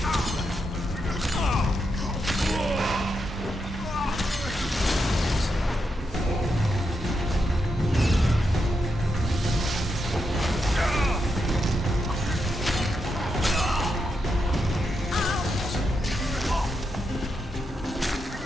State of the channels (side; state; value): both; normal; correlation 0.84